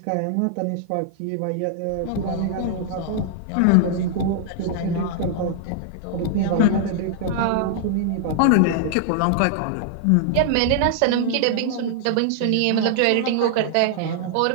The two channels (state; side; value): different; both; correlation -0.01